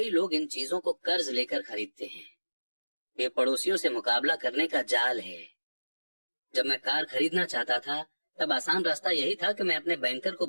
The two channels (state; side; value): inverted; both; correlation -1.00